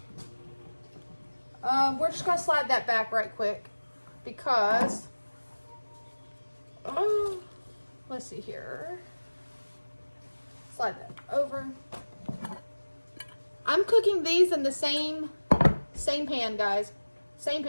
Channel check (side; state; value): both; inverted; correlation -1.00